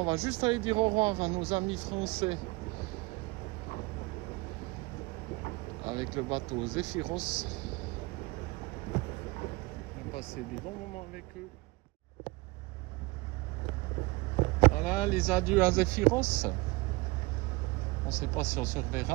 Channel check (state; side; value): quieter; left; 23.7 dB